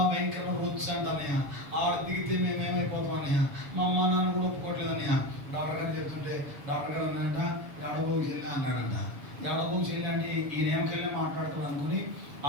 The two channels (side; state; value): left; late; 6.9 ms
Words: భయంకరమైన రొచ్చు అంట అన్నయ్య, ఆడ దిగితే మేమేమైపోతాం అన్నయ్య, మా అమ్మ నాన్న కూడా ఒప్పుకోవట్లేదు అన్నయ్య. డాక్టర్ గారు చెప్తుంటే డాక్టర్ గారు అన్నాడంట, ఎడబోకి చెల్లి అన్నాడంట. ఎడబోకి చెల్లి అంటే ఈయన ఏమకెళ్ళి మాట్లాడతాడు అనుకుని